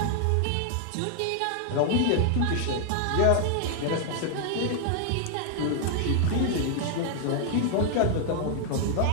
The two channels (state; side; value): different; both; correlation 0.00